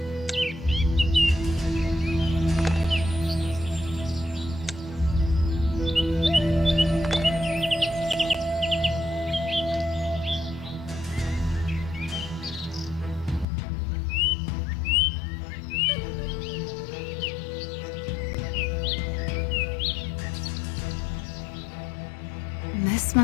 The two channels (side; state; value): right; drops out; at 13.5 s